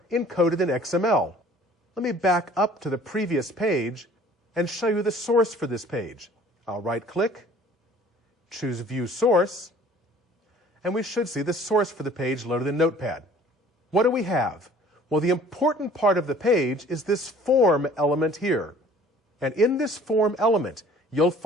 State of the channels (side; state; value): both; normal; correlation 0.52